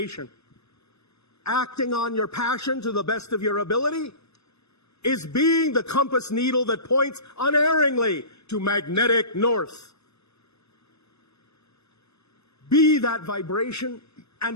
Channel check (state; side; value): late; right; 0.79 ms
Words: Acting on your passion to the best of your ability is being the compass needle that points unerringly to magnetic north. Be that vibration and